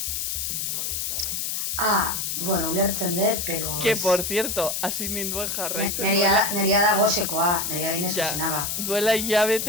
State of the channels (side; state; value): left; noise; hiss, 2 dB below the sound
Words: Bueno, ulertzen dut, pero... Que, por cierto, hasi ninduen jarraitzen duela. Neria da gosekoa, neria dinez Ja, zuzenaga. duela